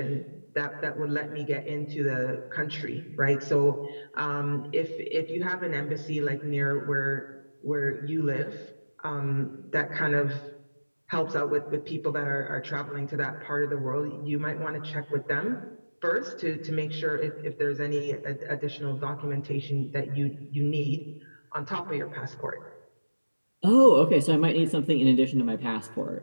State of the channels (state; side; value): inverted; both; correlation -1.00